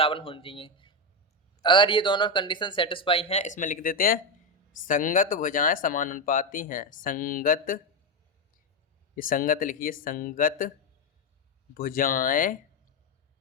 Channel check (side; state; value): both; normal; correlation 0.08